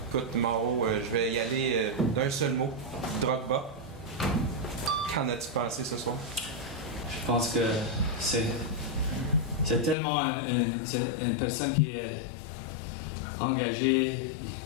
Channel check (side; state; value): right; drops out; at 10.0 s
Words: écoute, Mauro, je vais y aller d'un seul mot. Drogba. Qu'en as-tu pensé ce soir? Je pense que c'est tellement une personne qui est engagée.